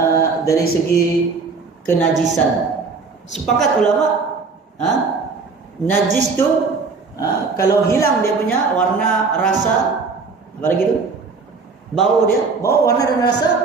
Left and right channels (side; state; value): left; quieter; 4.5 dB